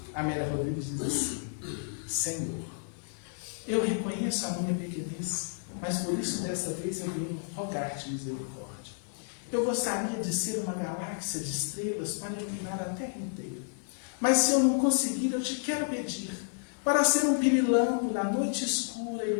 Amélia Rodrigues diz assim: Senhor, eu reconheço a minha pequenez, mas por isso desta vez eu venho rogar-te misericórdia. Eu gostaria de ser uma galáxia de estrelas para iluminar a Terra inteira. Mas se eu não conseguir, eu te quero pedir para ser um pirilampo na noite escura,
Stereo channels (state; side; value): silent; right; digital silence